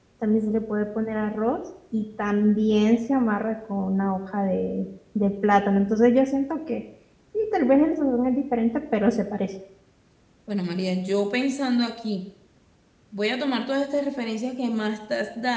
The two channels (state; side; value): identical; both; correlation 1.00